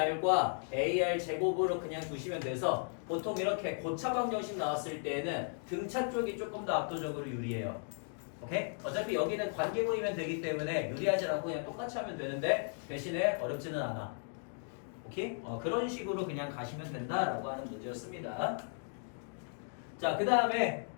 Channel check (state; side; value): silent; right; 54 dB below the other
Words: ar 제곱으로 그냥 두시면 돼서 보통 이렇게 고차 방정식 나왔을 때에는 등차 쪽이 조금 더 압도적으로 유리해요. 오케이? 어차피 여기는 관계 보이면 되기 때문에 유리하지 않고 그냥 똑같이 하면 되는데 대신에 어렵지는 않아. 오케이? 그런 식으로 그냥 가시면 된다라고 하는 문제였습니다. 자, 그 다음에